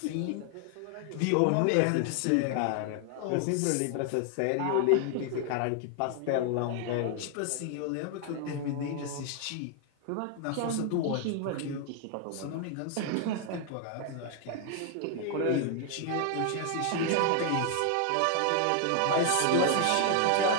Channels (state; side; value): different; both; correlation 0.00